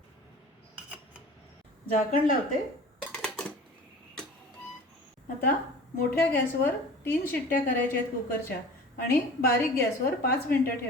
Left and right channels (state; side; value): normal; both; correlation 0.41